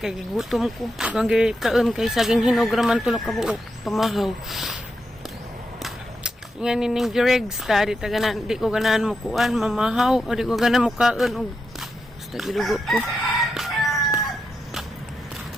gutom ko. Gang kaon kay saging hinog raman tulok ka buok pamahaw. Nga nining giregs ta di taganan di ko ganahan mo kuan mamahaw o di ko ganahan mo kaon og basta gidugo ko.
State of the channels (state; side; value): normal; both; correlation 0.85